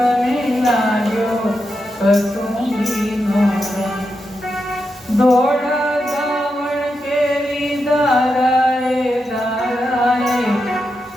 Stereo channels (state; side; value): normal; both; correlation 0.86